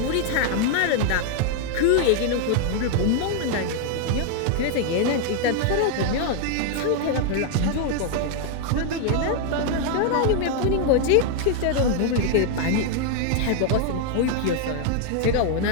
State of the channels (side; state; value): both; different; correlation 0.00